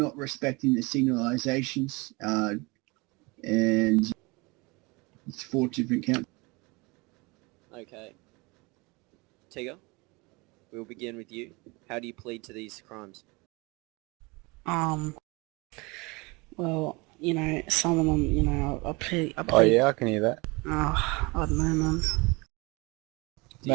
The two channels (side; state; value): left; quieter; 26.1 dB